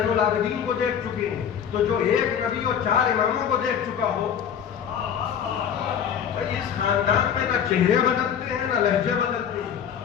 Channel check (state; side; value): quieter; right; 8.3 dB